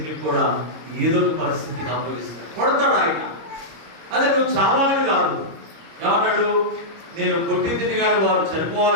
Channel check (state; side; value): late; left; 26 ms